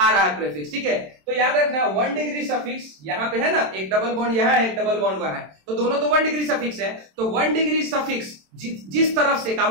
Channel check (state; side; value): late; left; 27 ms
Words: रहा है प्रेफिक्स, ठीक है, तो याद रखना 1 डिग्री सफिक्स यहाँ पे है ना, एक डबल बॉन्ड यहाँ है, एक डबल बॉन्ड वहां है, तो दोनों तो 1 डिग्री सफिक्स है, तो 1 डिग्री सफिक्स जिस तरफ से